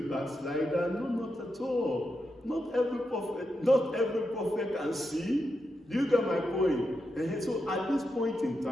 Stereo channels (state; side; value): normal; both; correlation 0.86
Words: backslider. No, not at all. Not every prophet can see. Do you get my point? And so at this point in